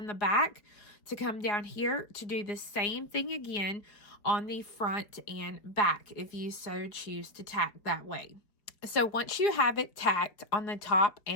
the back to come down here to do the same thing again on the front and back, if you so choose to tack that way. So once you have it tacked on the top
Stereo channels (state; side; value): late; right; 4.5 ms